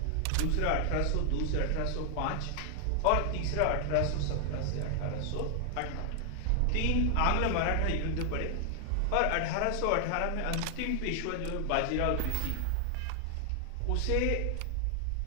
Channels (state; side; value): different; both; correlation 0.00